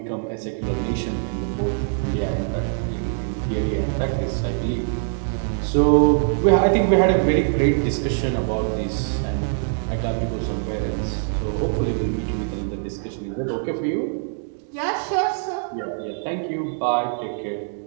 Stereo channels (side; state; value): left; silent; digital silence